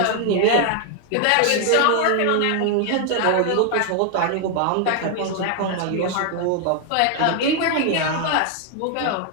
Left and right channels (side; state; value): both; different; correlation 0.00